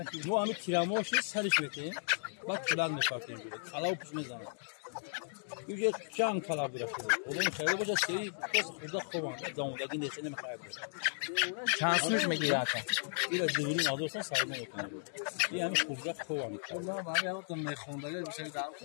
Bu amik kiramoşu sarış bekleyin. Bak şuradan da farklı böyle. Kala upuşmaz zaman. Yüce can kala bırakıyor. Onun şöyle boca şeyi burada kovan. Damudaki desene mi kaybeder? Şansmış mı ki zaten? Biraz düğünün alırsan sayma okunuyor. Yani kuracak kovan. Allah'ım abi yaptım ne kondayla bir şey daha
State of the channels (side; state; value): right; silent; digital silence